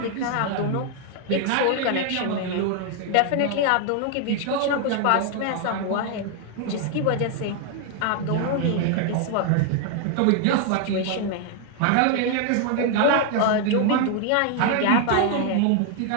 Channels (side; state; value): both; different; correlation 0.00